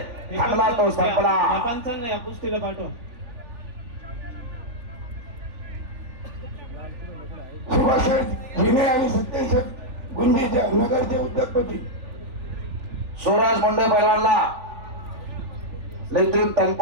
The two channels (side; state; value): left; late; 3.4 ms